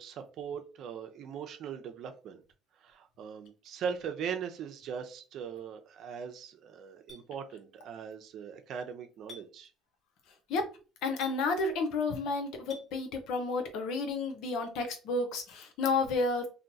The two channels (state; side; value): normal; both; correlation 0.43